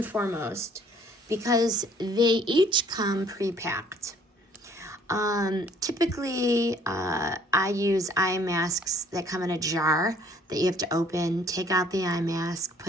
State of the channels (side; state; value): both; normal; correlation 0.59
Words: foremost because they each come pre-packed. Typically, I use eye masks that come in a jar that you have to open, take out the eye mask,